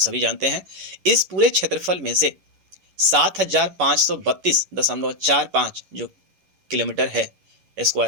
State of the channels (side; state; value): left; late; 11 ms